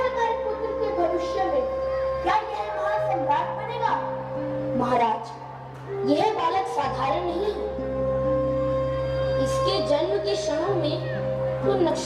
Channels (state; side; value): identical; both; correlation 1.00